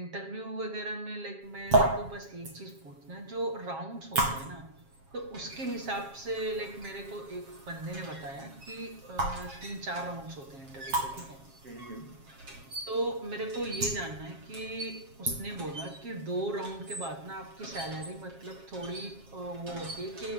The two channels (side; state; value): left; late; 7.4 ms